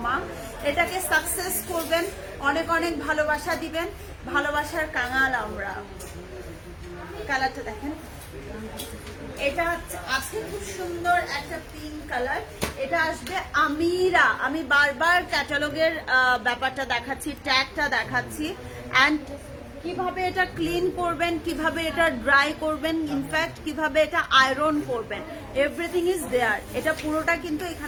এটাকে সাকসেস করবেন, অনেক অনেক ভালোবাসা দিবেন, ভালোবাসার কাঙাল আমরা। কালারটা দেখেন, এটা আছে খুব সুন্দর একটা পিঙ্ক কালার। এটা আসবে আমিরা। আমি বারবার ক্যাটালগের ব্যাপারটা দেখাচ্ছি, ট্যাগটা দেখাচ্ছি, এন্ড কিভাবে এটা ক্লিন করবেন, কিভাবে এটা ড্রাই করবেন, ইনফ্যাক্ট কিভাবে এটা আয়রন করবেন, এভরিথিং ইজ দেয়ার। এটা পুরোটা কিন্তু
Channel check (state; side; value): identical; both; correlation 1.00